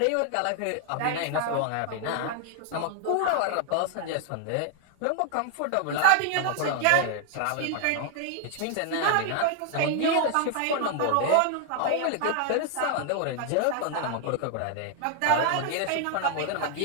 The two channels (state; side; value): different; both; correlation 0.00